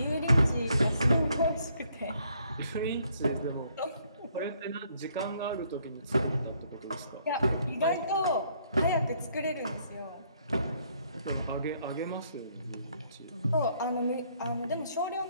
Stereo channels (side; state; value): both; inverted; correlation -0.68